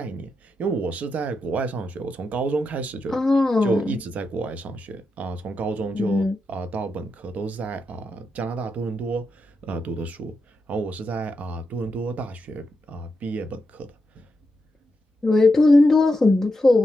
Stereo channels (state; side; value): normal; both; correlation 0.86